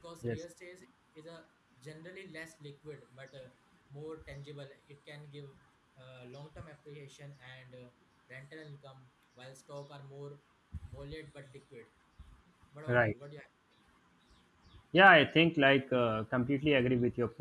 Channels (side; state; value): both; identical; correlation 1.00